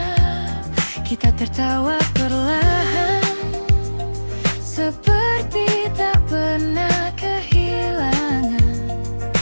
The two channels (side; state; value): both; inverted; correlation -1.00